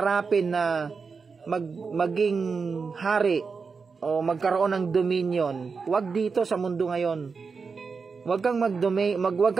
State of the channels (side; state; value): left; quieter; 5.1 dB